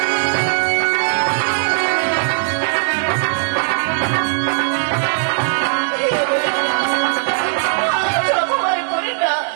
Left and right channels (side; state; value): left; silent; 66 dB below the other